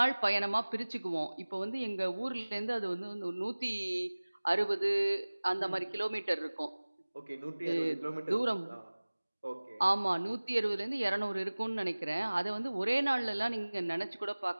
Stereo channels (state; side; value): inverted; both; correlation -1.00